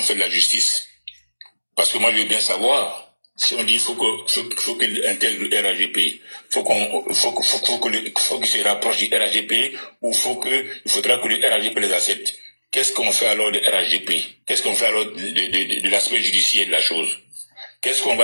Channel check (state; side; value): inverted; both; correlation -1.00